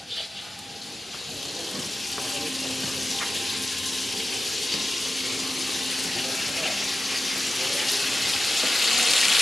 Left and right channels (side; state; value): both; normal; correlation 0.94